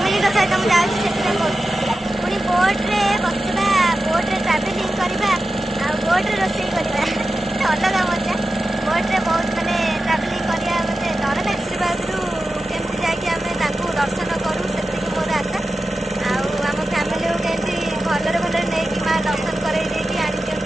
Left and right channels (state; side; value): normal; both; correlation 0.93